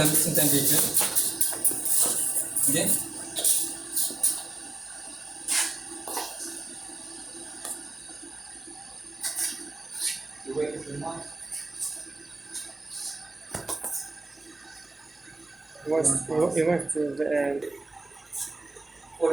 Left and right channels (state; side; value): quieter; left; 3.1 dB